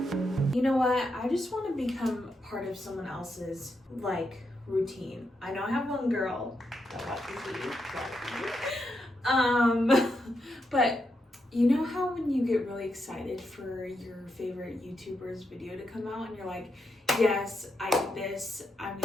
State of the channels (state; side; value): normal; both; correlation 0.83